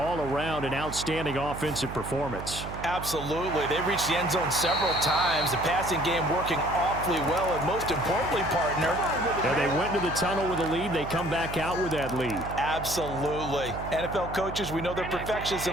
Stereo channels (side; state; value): right; noise; hum, 9 dB below the sound